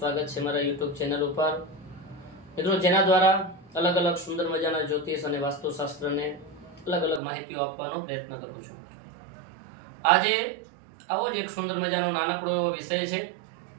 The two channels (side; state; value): left; drops out; at 7.2 s